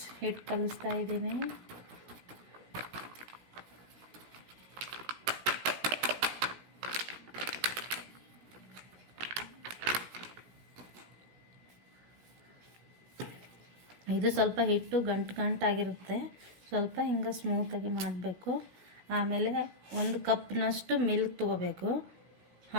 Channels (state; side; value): late; left; 16 ms